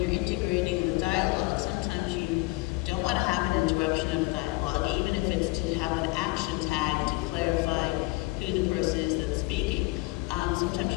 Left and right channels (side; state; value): right; quieter; 23.7 dB